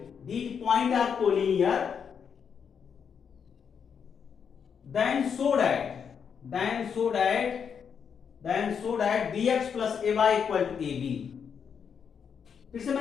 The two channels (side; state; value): right; quieter; 7.0 dB